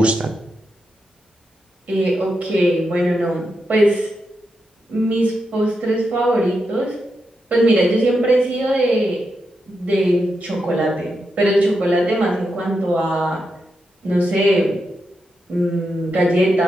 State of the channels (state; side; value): normal; both; correlation 0.86